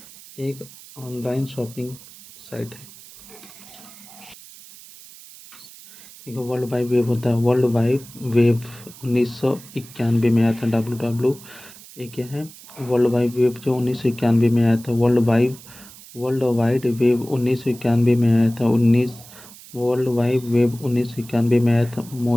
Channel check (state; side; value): noise; right; hiss, 19 dB below the sound